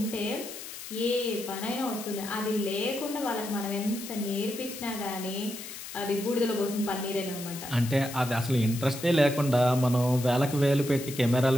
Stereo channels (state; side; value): noise; left; hiss, 11 dB below the sound